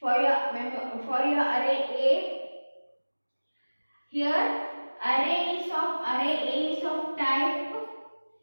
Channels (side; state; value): both; inverted; correlation -1.00